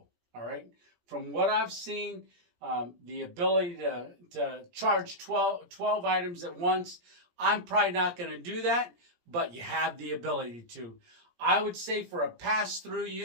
All right. From what I've seen, the ability to charge 12 items at once, I'm probably not going to do that, but you have the ability to. I would say for a pass-through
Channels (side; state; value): left; late; 17 ms